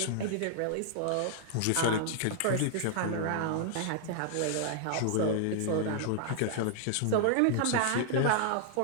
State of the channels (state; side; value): different; both; correlation 0.00